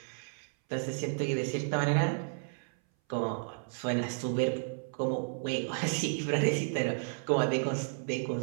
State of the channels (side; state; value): left; silent; 56 dB below the other